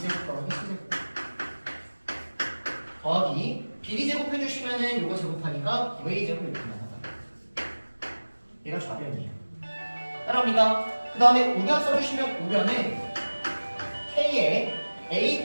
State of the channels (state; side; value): inverted; both; correlation -1.00